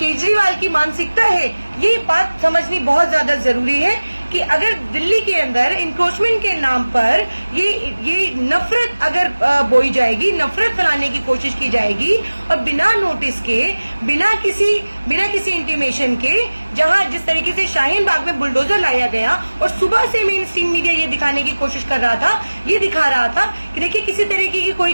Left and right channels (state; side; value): inverted; both; correlation -1.00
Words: की मानसिकता है, ये बात समझनी बहुत ज्यादा जरूरी है कि अगर दिल्ली के अंदर इंक्रोचमेंट के नाम पर ये नफरत अगर बोई जाएगी, नफरत फैलाने की कोशिश की जाएगी और बिना नोटिस के, बिना किसी इंटीमेशन के, जहां जिस तरीके से शाहीन बाग में बुलडोजर लाया गया और सुबह से मेन स्ट्रीम मीडिया ये दिखाने की कोशिश कर रहा था, ये दिखा रहा था कि देखिए किसी तरीके की कोई